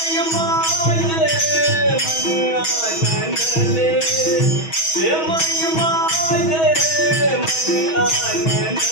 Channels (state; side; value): late; right; 6.2 ms